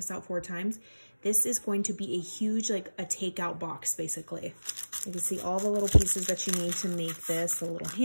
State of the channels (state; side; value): inverted; both; correlation -1.00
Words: out 4 times. This is going to be a huge, like a takeout box, basically. You can see all the little pieces that you need to make this. A little